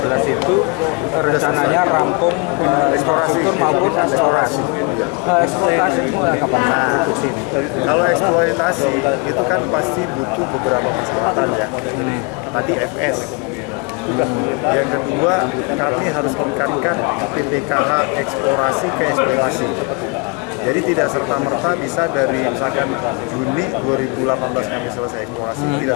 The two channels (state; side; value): quieter; right; 31.1 dB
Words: itu rencananya rampung infrastruktur maupun eksplorasi. Eksploitasi mulai kapan? Nah, kalau eksploitasi itu kan pasti butuh beberapa persyaratan ya. Tadi FS. Yang kedua, kami harus meningkatkan PPKH eksplorasi ke eksploitasi. Jadi tidak serta-merta bisa dari misalkan Juni 2018 kami selesai eksplorasi, tidak